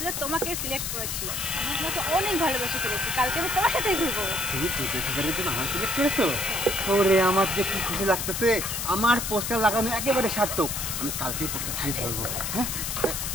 তোমাকে সিলেক্ট করেছি। আমি তোমাকে অনেক ভালোবেসে ফেলেছি। কালকে আমি তোমার সাথেই ঘুরবো। তুমি টিকেটের জন্য আমার সিলেক্ট করেছো? ওরে আমার যে কি খুশি লাগতেছে। আমার পোস্টার লাগানো একেবারে সার্থক। আমি কালকেই পোস্টার ছিঁড়ে ধরবো। হ্যাঁ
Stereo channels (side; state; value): left; noise; hiss, 3 dB below the sound